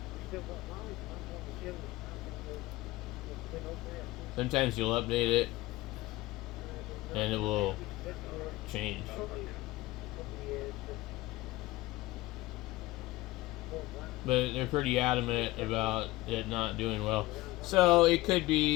Sometimes you'll update it and it will change. But they're pretty adamant about it not doing well. So it could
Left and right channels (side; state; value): right; quieter; 19.0 dB